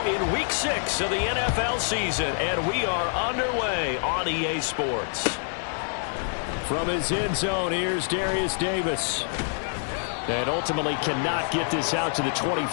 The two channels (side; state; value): right; silent; 61 dB below the other